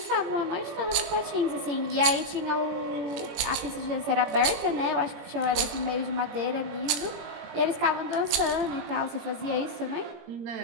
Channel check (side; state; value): left; late; 18 ms